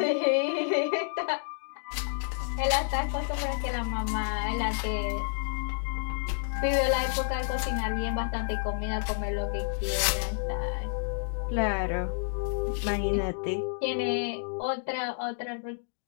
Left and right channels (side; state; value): right; silent; digital silence